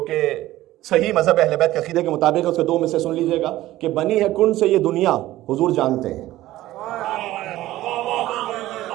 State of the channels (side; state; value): left; quieter; 15.7 dB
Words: कि सही मजहब अहले बैत के अकीदे के मुताबिक है। उसके दो में से सुन लीजिएगा कि बनी है कुन से ये दुनिया हुजूर जानते हैं।